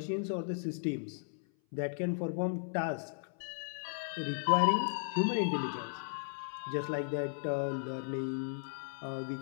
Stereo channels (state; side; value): silent; right; 54 dB below the other